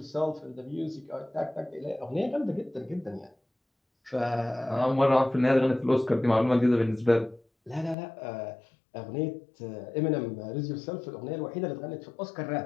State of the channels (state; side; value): drops out; right; at 8.0 s